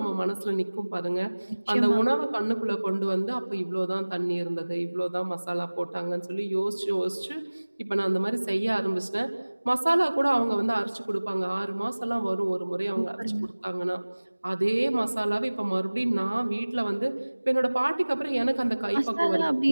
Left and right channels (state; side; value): inverted; both; correlation -1.00